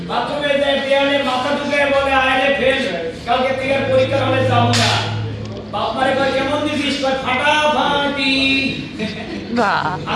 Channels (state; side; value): identical; both; correlation 1.00